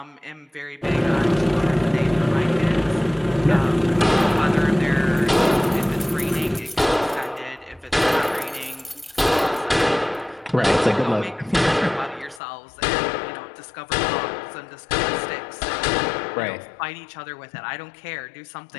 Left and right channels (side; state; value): right; drops out; at 12.4 s